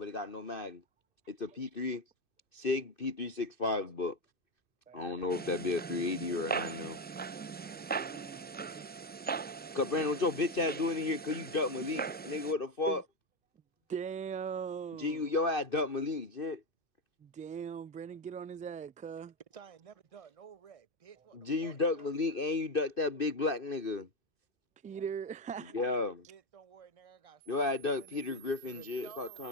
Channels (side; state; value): both; normal; correlation 0.11